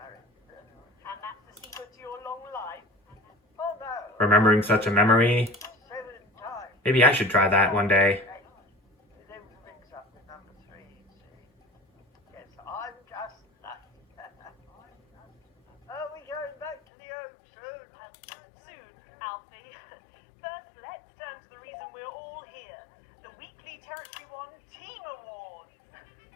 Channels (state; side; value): drops out; right; at 16.8 s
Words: And that's the secret to your long life. Oh no, Remembering such a memory, 7 times. maybe I should try that one day. There was a mix-up with number 3, you see. Yes, I'm just lucky. Are we going back to the Oak soon? Soon, Alfie. First, let's turn to the reason we're all here. The weekly Territory 1 Team Awards.